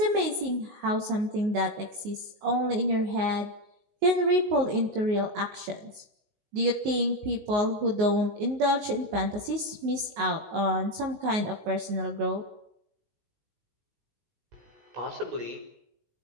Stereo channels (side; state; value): left; late; 19 ms